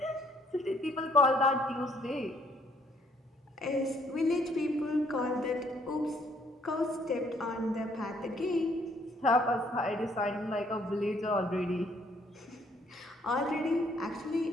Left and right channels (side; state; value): both; normal; correlation 0.66